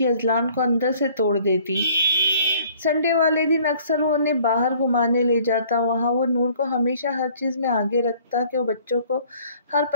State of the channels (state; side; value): inverted; both; correlation -0.56